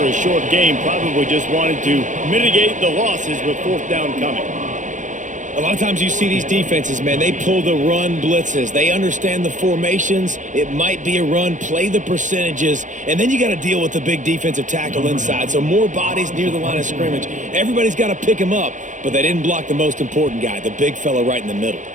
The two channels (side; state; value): left; late; 0.36 ms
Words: a short game, probably just wanted to mitigate the losses with 4th down coming. A lot of times you see these defenses, man, they pull the run blitzes. They understand the formations. It might be a run, play the percentages, and then you got to deal with the big defensive tackle inside. So more bodies near the line of scrimmage. Everybody's got to pick him up, but they didn't block the most important guy, the big fella right in the middle.